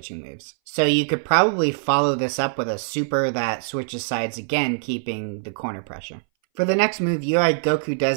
moves. So you could probably follow this up with a super that switches sides again, keeping the corner pressure. For the next move, UI Goku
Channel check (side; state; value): left; silent; 61 dB below the other